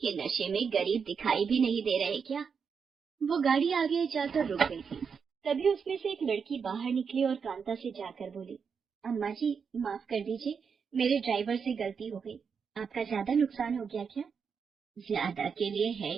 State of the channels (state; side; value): quieter; left; 6.2 dB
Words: नशे में गरीब दिखाई भी नहीं दे रहे क्या? वो गाड़ी आगे जाकर रुक गई थी। तभी उसमें से एक लड़की बाहर निकली और कांता से जाकर बोली, अम्मा जी, माफ कर दीजिए, मेरे ड्राइवर से गलती हो गई। आपका ज्यादा नुकसान हो गया क्या? ज्यादा के लिए है